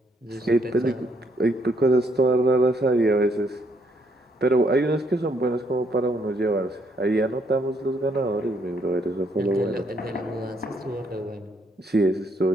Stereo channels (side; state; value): both; normal; correlation 0.72